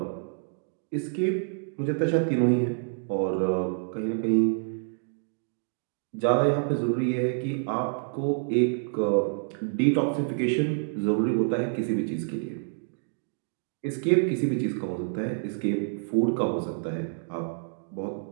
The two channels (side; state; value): left; silent; digital silence